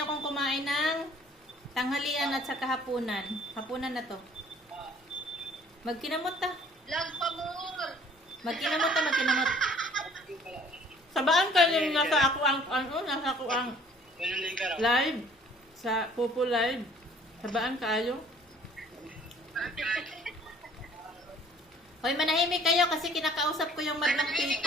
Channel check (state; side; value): normal; both; correlation 0.55